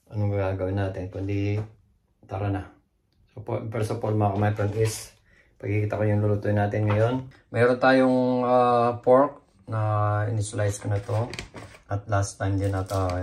anong gagawin natin? Kundi tara na. So first of all mga friend is, pagkikita ko yung lulutuin natin ngayon. Mayroon tayong pork na in-slice ko na to. At last time din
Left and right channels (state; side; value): identical; both; correlation 1.00